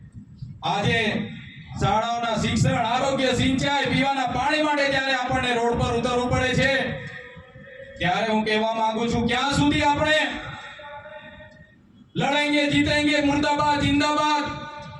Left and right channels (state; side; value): identical; both; correlation 1.00